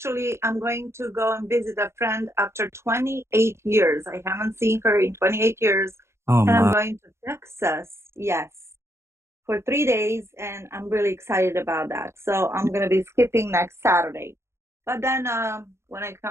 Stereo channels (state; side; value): late; left; 0.13 ms